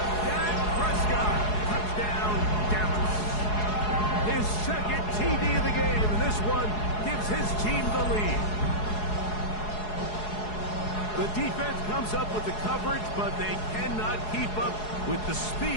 Dak Prescott. Touchdown, Dallas. His second TD of the game. And this one gives his team the lead. The defense comes up with the coverage, but they cannot keep up with the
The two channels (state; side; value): late; right; 4.7 ms